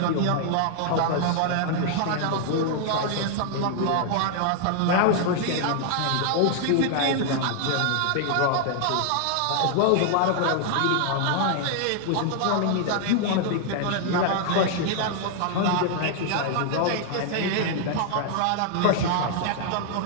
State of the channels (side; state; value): both; different; correlation 0.00